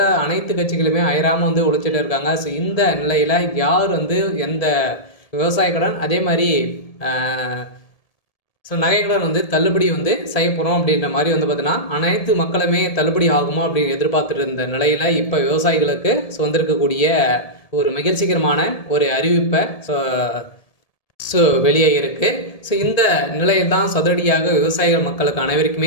அனைத்து கட்சிகளுமே அயராமல் உழைச்சிட்டு இருக்காங்க. இந்த நிலையில் யார் எந்த விவசாய கடன் அதே மாதிரி நகை கடன் தள்ளுபடி செய்ய போகிறோம் அப்படின்ற மாதிரி பார்த்தீங்கன்னா அனைத்து மக்களுமே தள்ளுபடி ஆகுமா அப்படின்னு எதிர்பார்த்துட்டு இருந்த நிலையில் இப்போ விவசாயிகளுக்கு வந்திருக்கக்கூடிய ஒரு மகிழ்ச்சிகரமான ஒரு அறிவிப்பை வெளியே இருக்குது. இந்த நிலையில் தான் அதிரடியாக விவசாயிகள் மக்களுக்கு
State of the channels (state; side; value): late; right; 1.7 ms